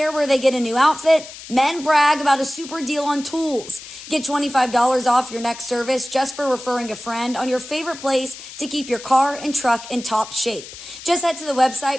where they get a new outfit. Men brag about a super deal on tools. Get $25 off your next service just for referring a friend on your favorite place to keep your car and truck in top shape. Just head to the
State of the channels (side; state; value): left; noise; hiss, 14 dB below the sound